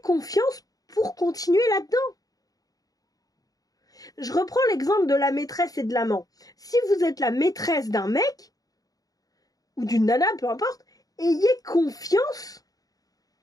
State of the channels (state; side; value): late; right; 0.18 ms